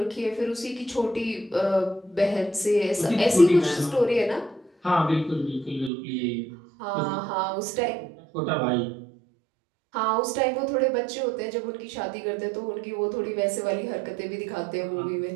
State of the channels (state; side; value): drops out; left; at 5.9 s